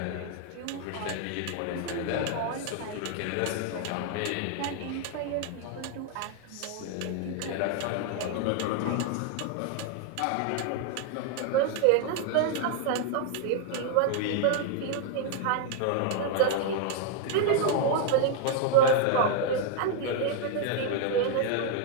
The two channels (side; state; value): both; different; correlation 0.00